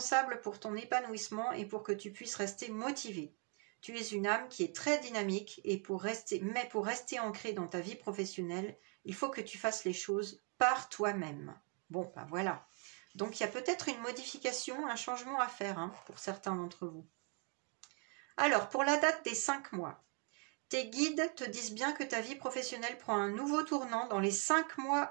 pour ton épanouissement et pour que tu puisses rester motivé. Tu es une âme qui est très dynamique et pour rester ancrée dans ta vie professionnelle, il faut que tu fasses les choses par toi-même. Bon, ben voilà. Donc, il y a peut-être une modification, un changement à faire hein, pour certains d'entre vous. Alors, pour la date des 5 mois, tes guides te disent bien que ta vie professionnelle prend un nouveau tournant dans les 5 mois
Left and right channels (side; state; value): left; quieter; 32.9 dB